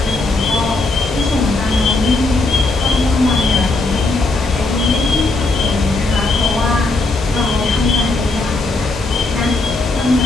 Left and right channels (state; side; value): quieter; right; 3.2 dB